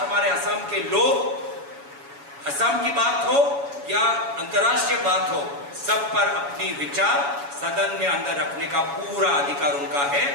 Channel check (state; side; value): late; left; 7.1 ms